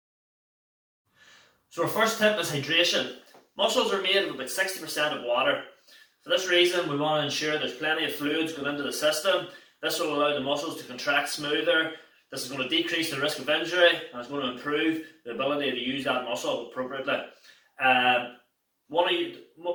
So our first tip is hydration. Muscles are made of about 60% of water. For this reason, we want to ensure there's plenty of fluids going into the system. This will allow the muscles to contract smoother. This is going to decrease the risk of injury and it's going to improve the ability to use that muscle appropriately.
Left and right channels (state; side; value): identical; both; correlation 1.00